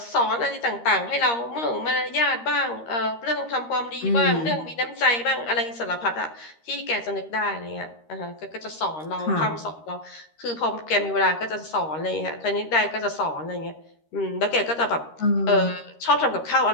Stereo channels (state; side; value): late; right; 13 ms